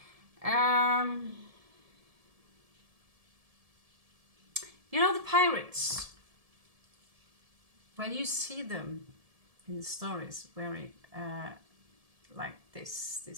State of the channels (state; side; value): late; left; 1.7 ms